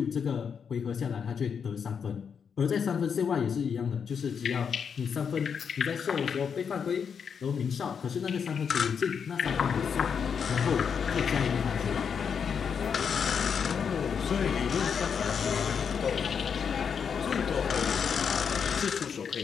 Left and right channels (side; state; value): right; quieter; 6.8 dB